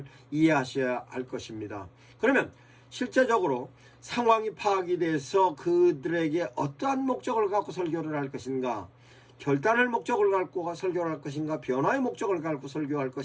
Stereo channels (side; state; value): both; identical; correlation 1.00